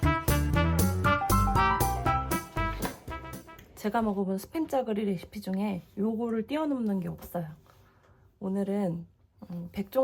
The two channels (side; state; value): both; identical; correlation 1.00